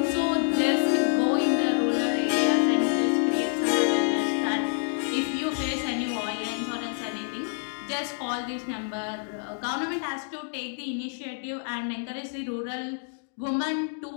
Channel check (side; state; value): right; silent; digital silence